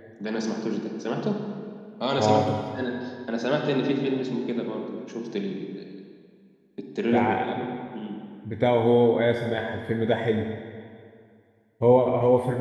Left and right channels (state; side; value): identical; both; correlation 1.00